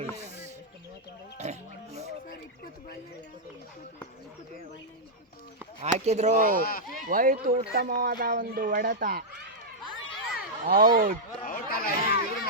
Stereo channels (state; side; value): normal; both; correlation -0.07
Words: ಹಾಕಿದ್ರು, ಹೋಯ್ತು. ಉತ್ತಮವಾದ ಒಂದು ಹೊಡೆತ. ಔಟ್. ಔಟ್ ಅಲ್ಲ, ಇದ್ರ